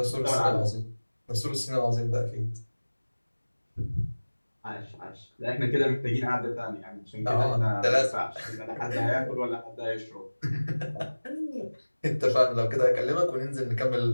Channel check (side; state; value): both; inverted; correlation -1.00